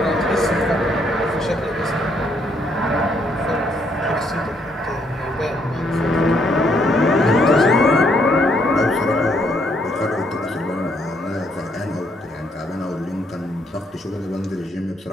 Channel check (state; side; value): normal; both; correlation 0.71